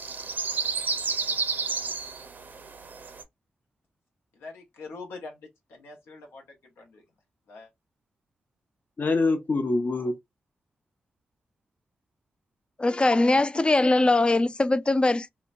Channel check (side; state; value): both; normal; correlation 0.77